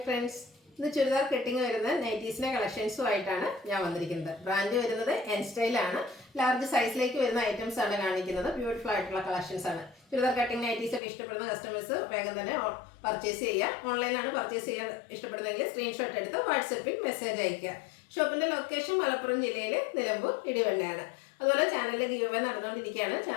friends, ഇന്ന് churidar cutting വരുന്ന നൈറ്റീസിന്റെ കളക്ഷൻസുമായിട്ടാണ് ഞാൻ വന്നിരിക്കുന്നത്. ബ്രാൻഡ് വരുന്നത് എൻ സ്റ്റൈൽ ആണ്. ലാർജ് സൈസിലേക്ക് വരുന്ന ഐറ്റംസ് ആണ് കാണിക്കുന്നത്. ബ്യൂട്ടിഫുൾ ആയിട്ടുള്ള കളക്ഷൻസ് ആണ്. ചുരിദാർ കട്ടിങ് നൈറ്റീസ് ഒക്കെ ഇഷ്ടപ്പെടുന്ന കസ്റ്റമേഴ്സ് വേഗം തന്നെ പർച്ചേസ് ചെയ്യുക. ഓൺലൈനാണ് പർച്ചേസ് ചെയ്യാൻ ഇഷ്ടപ്പെടുന്നതെങ്കിൽ സ്ക്രീൻഷോട്ട് എടുത്ത് വാട്സപ്പിൽ മെസ്സേജ് അയക്കുക. ഷോപ്പിന്റെ ലൊക്കേഷൻ മലപ്പുറം ജില്ലയിൽ നിലമ്പൂർ ഇടിവണ്ണയാണ്. അതുപോലെ ചാനലിലെ ഗീവ് അവേ നടന്നുകൊണ്ടിരിക്കുകയാണ്.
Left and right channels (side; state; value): right; drops out; at 11.0 s